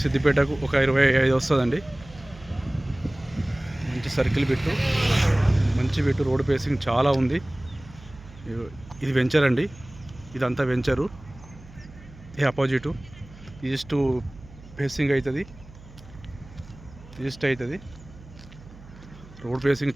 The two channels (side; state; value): right; noise; hum, 20 dB below the sound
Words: సిద్దిపేటకు ఒక 25 వస్తుందండి. మంచి సర్కిల్ పెట్టు, మంచి పెట్టు. రోడ్ ఫేసింగ్ చాలా ఉంది. ఇది వెంచర్ అండి. ఇదంతా వెంచరు. ఇది అపోజిటు ఈస్ట్ ఫేసింగ్ అవుతుంది. ఈస్ట్ అవుతుంది. రోడ్ ఫేసింగ్